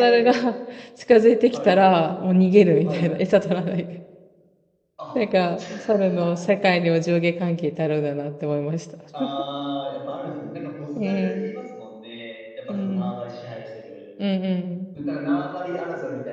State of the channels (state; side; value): identical; both; correlation 1.00